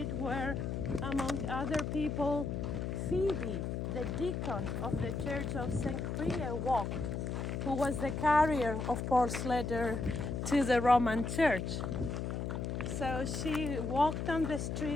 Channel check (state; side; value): noise; left; hum, 3 dB below the sound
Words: where, among other people, Phoebe, the deacon of the Church of St. Crea, walked, who was the carrier of Paul's letter to the Roman Church. So she walked on the